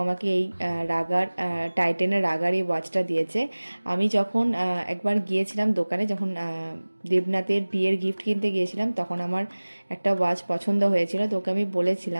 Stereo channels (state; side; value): inverted; both; correlation -1.00